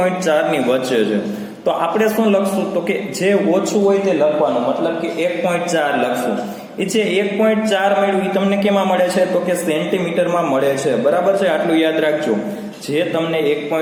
ની વચ્ચે છે. તો આપણે શું લખશું? તો કે જે ઓછું હોય તે લખવાનું, મતલબ કે 1.4 લખશું. એ જે 1.4 મળ્યું એ તમને કેમાં મળે છે? તો કે સેન્ટીમીટરમાં મળે છે, બરાબર છે. આટલું યાદ રાખજો. જે તમને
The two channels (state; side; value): identical; both; correlation 1.00